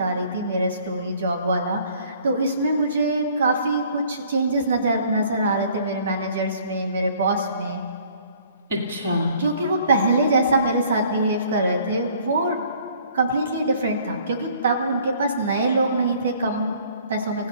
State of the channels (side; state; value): both; inverted; correlation -0.57